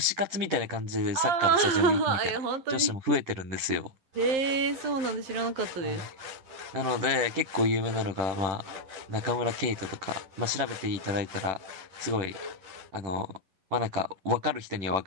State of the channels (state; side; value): late; left; 10 ms